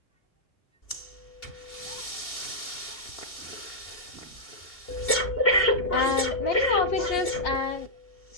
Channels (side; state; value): right; late; 2.8 ms